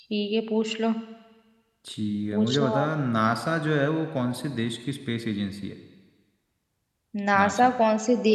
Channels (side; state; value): both; identical; correlation 1.00